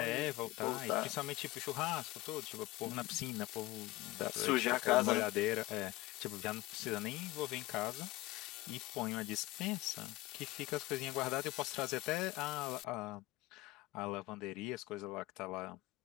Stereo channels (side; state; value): right; quieter; 18.6 dB